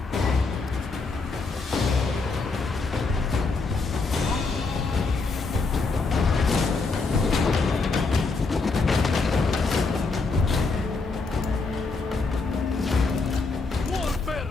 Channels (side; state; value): right; quieter; 4.0 dB